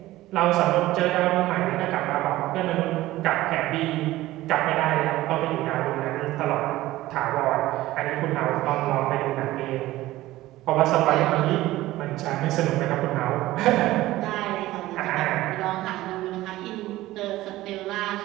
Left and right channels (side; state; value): left; quieter; 16.6 dB